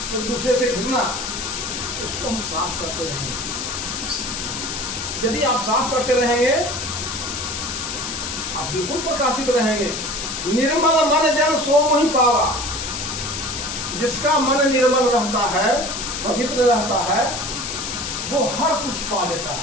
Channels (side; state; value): left; noise; hiss, 5 dB below the sound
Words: एक दूसरे से घृणा। उसको हम साफ करते रहेंगे। यदि आप साफ करते रहेंगे, आप बिल्कुल प्रकाशित रहेंगे। निर्मल मन जन सो मोहि पावा। जिसका मन निर्मल रहता है, पवित्र रहता है, वो हर कुछ पा लेता